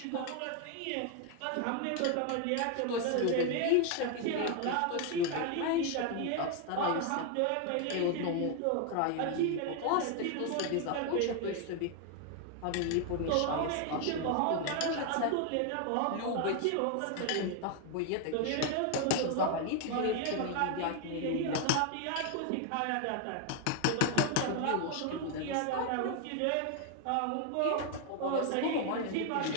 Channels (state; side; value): different; both; correlation 0.01